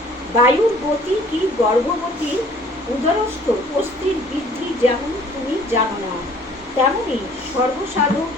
বায়ুর গতি কি গর্ভবতী উদরস্থ অস্থির বৃদ্ধি যেমন তুমি জানো না, তেমনি সর্বসাধক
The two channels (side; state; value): both; normal; correlation 0.54